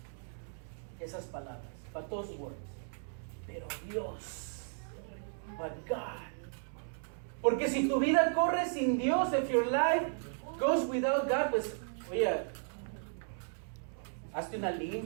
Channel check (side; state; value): left; silent; digital silence